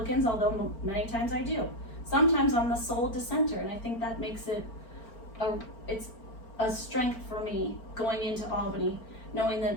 although many times I do. Sometimes I'm the sole dissenter, and I think that makes it it's a strength for me going into Albany, knowing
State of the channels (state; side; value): late; right; 4.4 ms